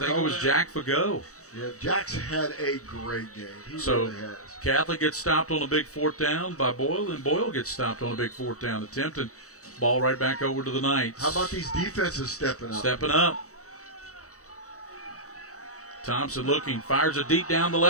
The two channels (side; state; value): right; late; 0.65 ms